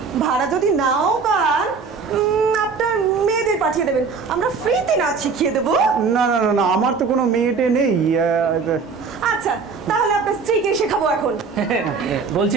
ভাড়া যদি নাও পান আপনার মেয়েদের পাঠিয়ে দেবেন, আমরা ফ্রিতে নাচ শিখিয়ে দেবো। না না না না, আমার তো কোনো মেয়েটে নেই। আচ্ছা, তাহলে আপনার স্ত্রীকে শেখাবো এখন।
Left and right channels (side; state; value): left; quieter; 5.1 dB